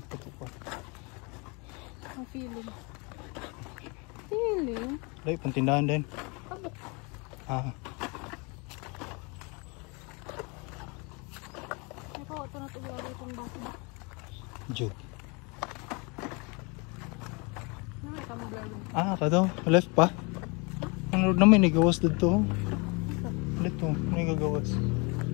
pa ito pa. Ang feeling. Feeling? Dahil, pantindahan din. Abok. Ah, Ito, ito na ito gawin itong baso ba? Jug. Ano may tama gawin? Ah, kadaw. Left pa. Ano naman, nagawas dito. Dito, may gagawas.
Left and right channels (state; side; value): quieter; right; 30.3 dB